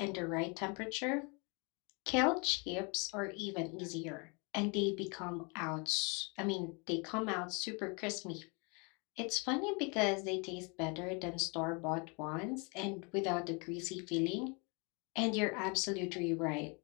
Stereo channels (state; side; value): quieter; right; 32.3 dB